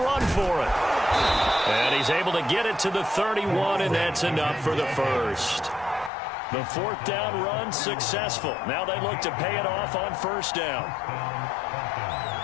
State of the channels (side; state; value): right; drops out; at 6.1 s